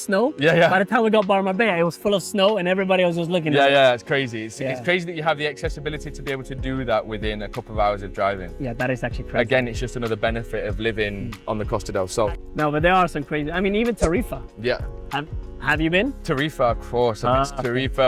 Yeah. By the time we got by Marbella, it was full of snow, and everybody was just looking at us. Yeah, it's crazy. It's crazy that you have the accessibility to be able to do that within a couple of hours of driving. Yeah, that is actually crazy. Again, it's just another benefit of living on the Costa del Sol. No, but there are some crazy. I mean, even Tarifa. Yeah. Have you been? Tarifa, of course.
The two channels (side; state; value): both; identical; correlation 1.00